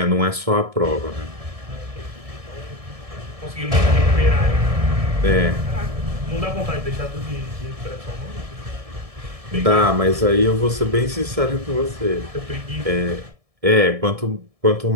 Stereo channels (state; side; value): late; left; 1.7 ms